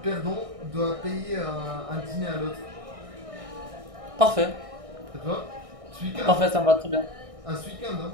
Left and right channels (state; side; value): late; left; 1.6 ms